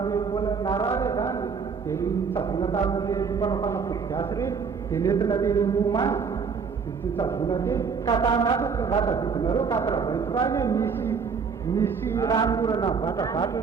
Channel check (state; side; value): quieter; left; 5.8 dB